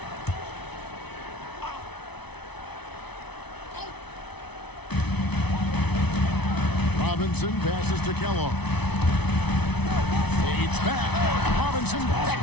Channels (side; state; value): right; late; 0.99 ms